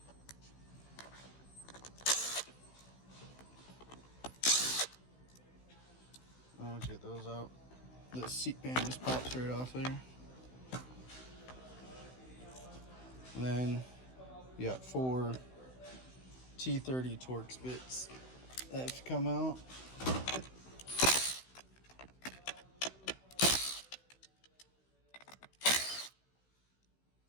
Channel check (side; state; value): right; late; 16 ms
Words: Once you get those out, the seat pan just pops right off there. And then you got 4 T30 Torx bits that have to come out.